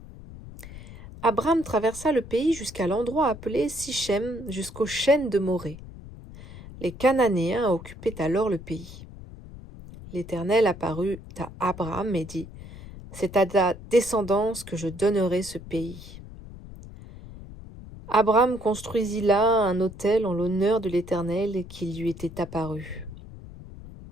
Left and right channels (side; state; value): left; noise; rumble, 15 dB below the sound